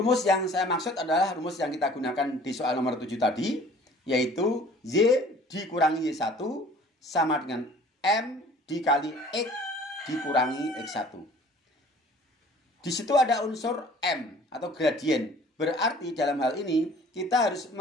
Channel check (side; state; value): both; normal; correlation 0.50